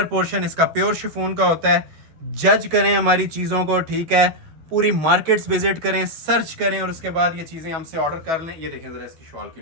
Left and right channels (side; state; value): left; late; 13 ms